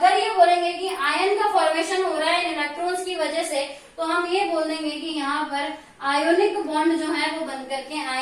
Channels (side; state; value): both; identical; correlation 1.00